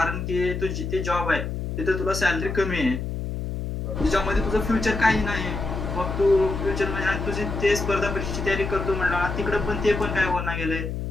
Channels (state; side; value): noise; left; hum, 4 dB below the sound